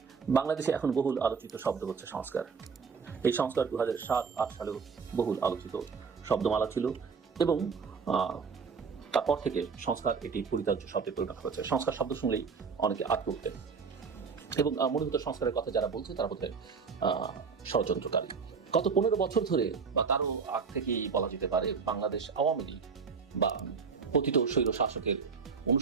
বাংলাদেশে এখন বহুল আলোচিত শব্দ হচ্ছে সংস্কার। এই সংস্কার 2007-8 সালেও বহুল আলোচিত শব্দমালা ছিল এবং তারপর থেকে সংস্কার এটি পরিত্যাজ্য শব্দে পরিণত হয়েছে। সংস্কার শব্দ শুনলেই অনেকে আটকে উঠতেন এবং মনে হতো সংস্কারের কথা যারা বলছে তারা বোধহয় ষড়যন্ত্রকারী। গত 15 বছর ধরে বা তারও আগ থেকেই বলা যেতে পারে বাংলাদেশ আওয়ামী লীগ বা পতিত স্বৈর শাসকের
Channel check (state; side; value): quieter; left; 5.6 dB